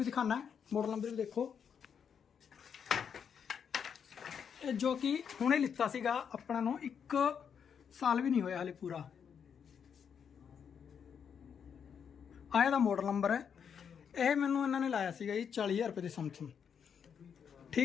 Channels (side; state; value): right; quieter; 7.3 dB